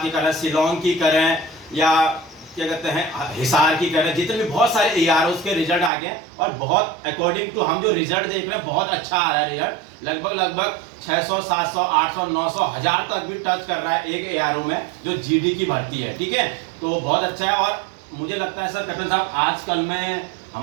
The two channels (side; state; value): left; drops out; at 5.9 s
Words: की करें, शिलोंग की करें, या क्या कहते हैं हिसार की करें, जितने भी बहुत सारे एआरओस के रिजल्ट आ गए हैं और बहुत अकॉर्डिंग टू हम जो रिजल्ट देख रहे हैं बहुत अच्छा आ रहा है रिजल्ट। लगभग 600, 700, 800, 900, 1000 तक भी टच कर रहा है एक एआरओ में जो जीडी की भर्ती है। ठीक है, तो बहुत अच्छा है। और मुझे लगता है सर कैप्टन साहब आजकल में